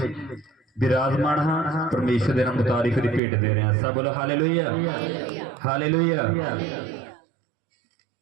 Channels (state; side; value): drops out; left; at 3.2 s